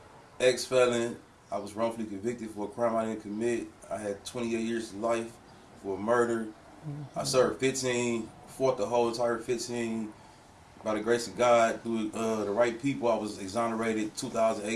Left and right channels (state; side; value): identical; both; correlation 1.00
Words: Ex-felon. I was wrongfully convicted for a crime I didn't commit. I had 28 years of life for murder. I served 15. Fought the whole entire 15. By the grace of God, through the right people, I was exonerated